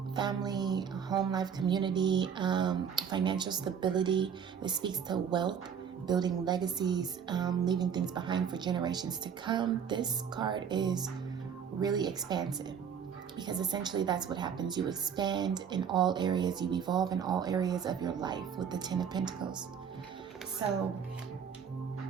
family, home life, community, financial stability. This speaks to wealth, building legacies, leaving things behind for generations to come. This card is really expansive, because essentially that's what happens. You expand in all areas, you evolve in all areas of your life with the Ten of Pentacles. So,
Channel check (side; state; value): left; quieter; 7.5 dB